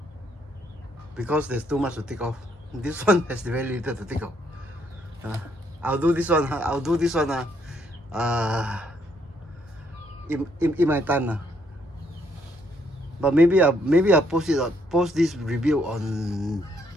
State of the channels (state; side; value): normal; both; correlation 0.71